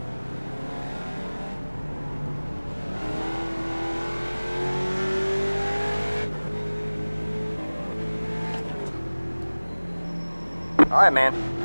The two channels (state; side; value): inverted; both; correlation -1.00